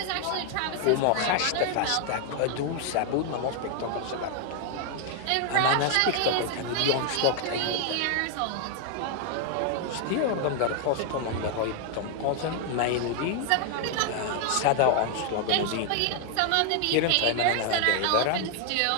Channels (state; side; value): different; both; correlation 0.00